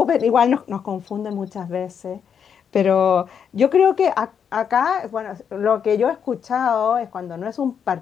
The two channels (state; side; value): quieter; right; 7.5 dB